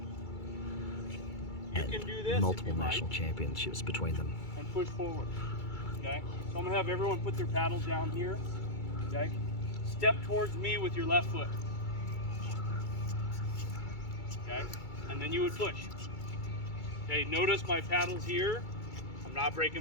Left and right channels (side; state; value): right; late; 2.3 ms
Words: and multiple national championships between them. And push forward. Okay? So I'm going to have everyone put their paddles down here. Okay? Step towards me with your left foot. Okay? And then you would push. Okay, notice my paddles here. I'm not